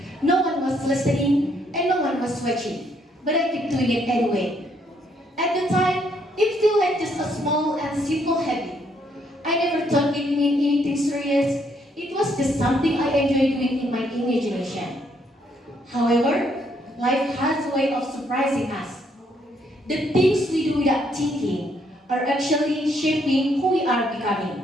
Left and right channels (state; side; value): normal; both; correlation 0.71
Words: No one was listening and no one was watching, but I kept doing it anyway. At the time, it felt like just a small and simple habit. I never thought it meant anything serious. It was just something I enjoyed doing in my imagination. However, life has a way of surprising us. The things we do without thinking are actually shaping who we are